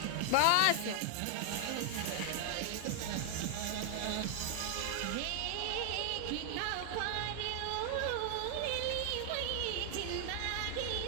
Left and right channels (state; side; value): different; both; correlation 0.00